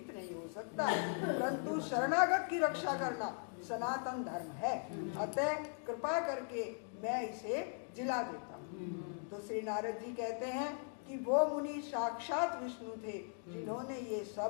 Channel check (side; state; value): right; silent; 51 dB below the other